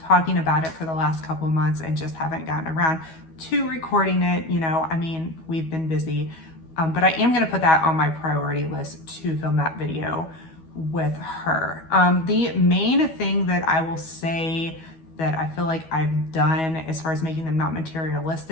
talking about it for the last couple of months and just haven't gotten around to recording it. You know, I mean, we've been busy, but I am gonna put that on my priority list to film that video with her. The main thing that I will say that I feel like I've done as far as making them not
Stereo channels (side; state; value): right; late; 12 ms